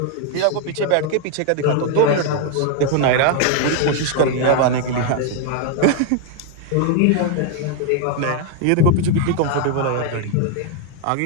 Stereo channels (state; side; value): different; both; correlation 0.01